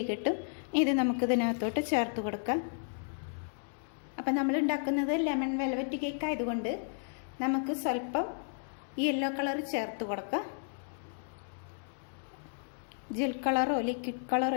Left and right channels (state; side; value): silent; right; 56 dB below the other